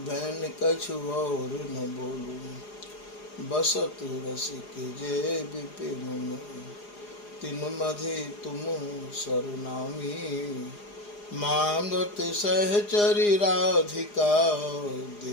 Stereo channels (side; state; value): right; late; 4.9 ms